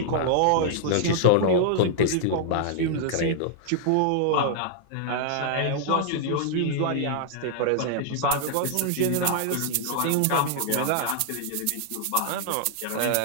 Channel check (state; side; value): different; both; correlation -0.01